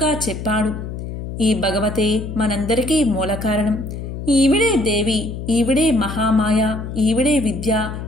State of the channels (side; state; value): left; noise; hum, 7 dB below the sound